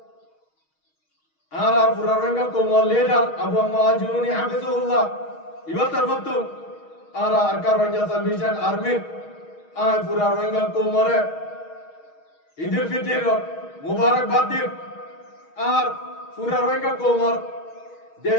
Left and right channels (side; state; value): right; late; 6.4 ms